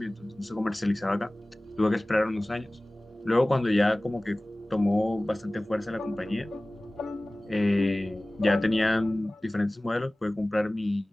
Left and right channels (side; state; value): both; normal; correlation 0.98